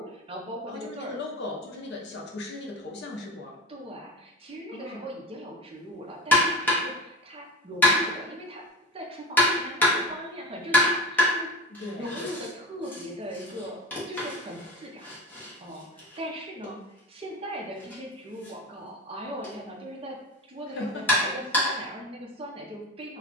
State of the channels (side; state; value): both; normal; correlation 0.30